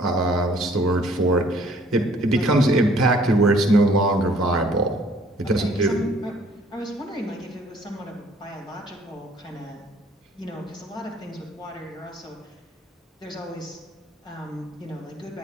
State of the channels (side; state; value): both; normal; correlation 0.58